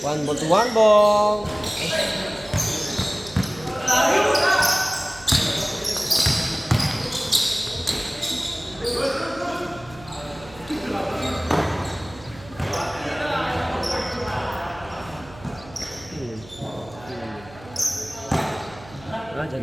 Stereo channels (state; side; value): noise; right; hum, 20 dB below the sound